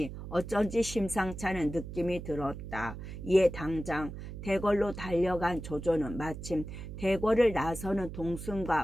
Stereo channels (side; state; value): right; noise; hum, 10 dB below the sound